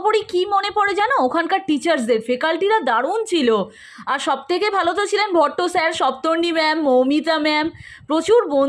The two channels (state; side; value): identical; both; correlation 1.00